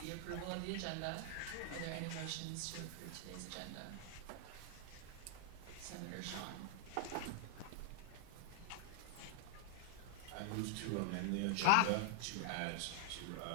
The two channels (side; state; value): both; different; correlation 0.00